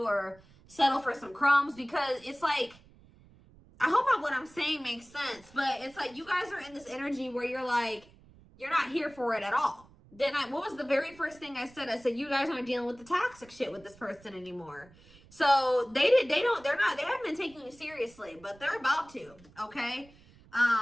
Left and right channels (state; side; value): noise; right; rumble, 25 dB below the sound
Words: or settle for some crumbs, because it's like, I hope what I'm saying makes sense, but it's like you guys are in this energy where you're like, you're not here for it at all. Then what was the very first thing I said? I said, you guys aren't dealing with the toxic shit with this person anymore. So they haven't been taking you seriously, but they're about to, okay?